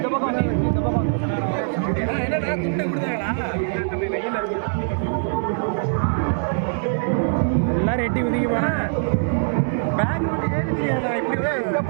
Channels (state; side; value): silent; left; 64 dB below the other